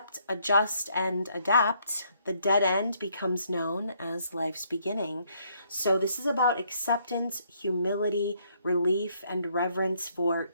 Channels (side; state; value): both; inverted; correlation -0.70